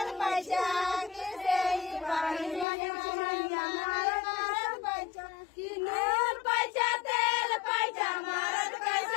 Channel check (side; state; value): right; drops out; at 2.7 s